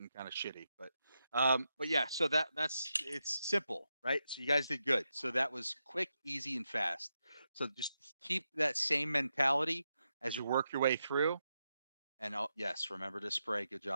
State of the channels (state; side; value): inverted; both; correlation -0.86